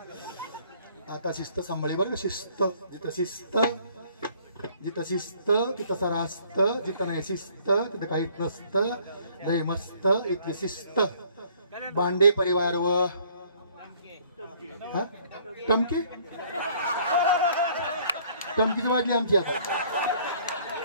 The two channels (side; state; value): both; inverted; correlation -0.59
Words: आता शिस्त सांभाळी बरं. शिस्त जिथं शिस्त जिथं शिस्त तिथं सारा असतं. जिथं नाही शिस्त तिथं काहीच नसतं. लय मस्त इथली शिस्त. बांडे परिवार व टमकी टमकीच वाजली आमची. आता